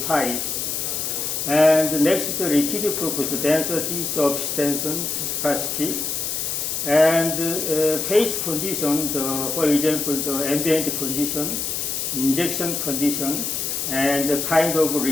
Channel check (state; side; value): noise; left; hiss, 2 dB below the sound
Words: types. And next, the liquid property, density, surface tension, viscosity, and phase condition, for example, the ambient condition, injection condition, and the kind of